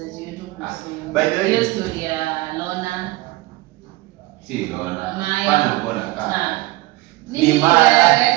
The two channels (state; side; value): quieter; left; 19.8 dB